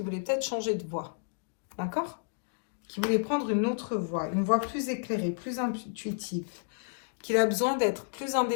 voulait peut-être changer de voie. D'accord? Qu'il voulait prendre une autre voie, une voie plus éclairée, plus intuitive. Qu'il a besoin d'être plus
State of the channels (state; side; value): silent; right; digital silence